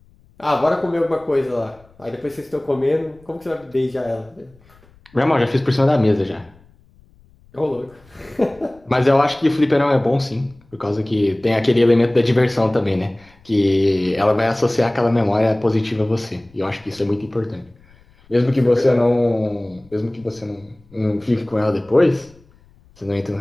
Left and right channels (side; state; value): left; noise; rumble, 29 dB below the sound